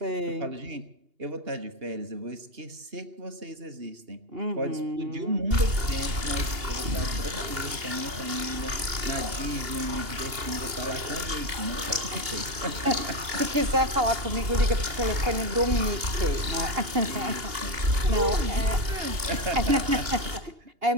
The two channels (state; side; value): late; left; 2.8 ms